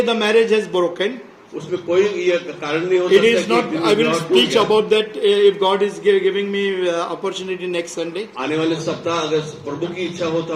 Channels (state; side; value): identical; both; correlation 1.00